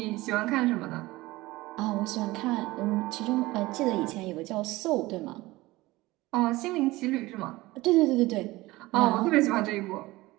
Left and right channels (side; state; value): left; quieter; 19.6 dB